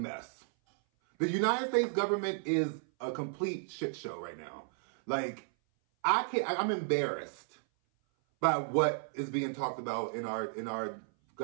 The United States government is a complete shit show right now. Like, I'm embarrassed by what is being talked about in our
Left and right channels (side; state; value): left; silent; 55 dB below the other